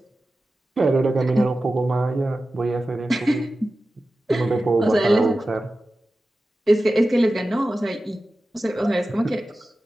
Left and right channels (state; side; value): normal; both; correlation 0.94